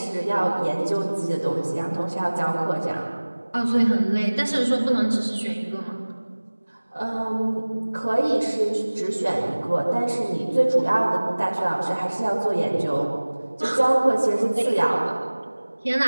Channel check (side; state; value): both; inverted; correlation -1.00